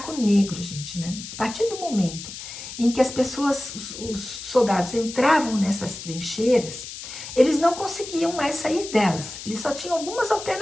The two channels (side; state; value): left; noise; hiss, 11 dB below the sound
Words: negro, gente, né? A partir do momento em que as pessoas, os soldados entravam nessas trincheiras, eles não conseguiam mais sair delas. Eles só tinham algumas